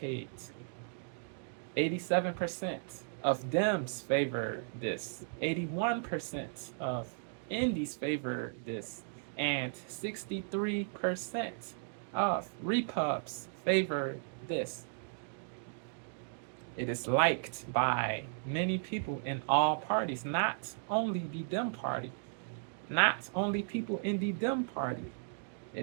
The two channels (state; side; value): silent; left; digital silence